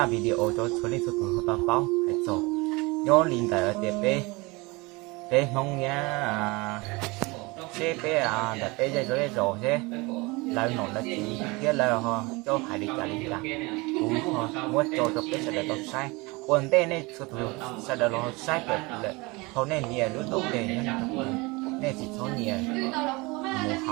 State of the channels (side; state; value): left; quieter; 25.0 dB